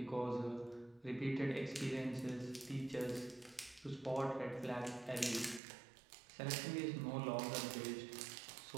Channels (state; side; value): drops out; left; at 5.6 s